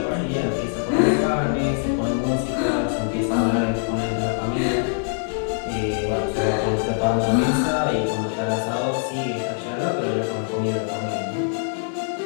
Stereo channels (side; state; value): right; silent; digital silence